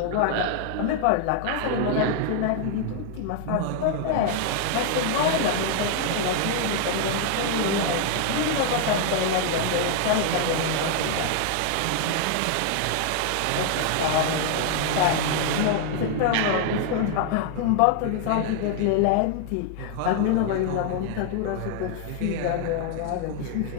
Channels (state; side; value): different; both; correlation 0.00